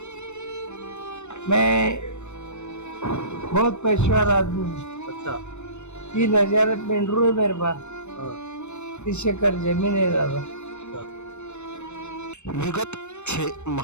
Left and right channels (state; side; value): late; right; 0.82 ms